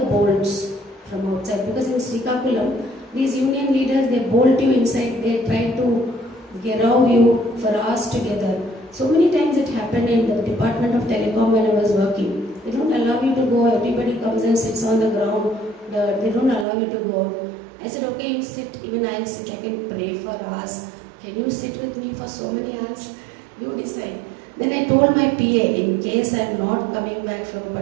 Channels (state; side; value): drops out; left; at 16.7 s